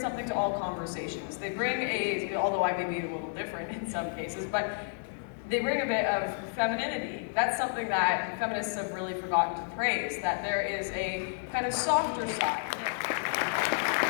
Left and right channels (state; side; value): silent; right; digital silence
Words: to all conversations. They bring although I may be a little different in some cases, but they bring a bit of femininity. That's something that feminists have really forgotten to praise, that there is a kind of softer side.